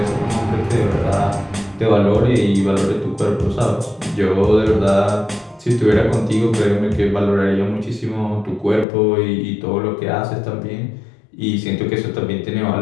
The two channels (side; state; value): right; drops out; at 8.8 s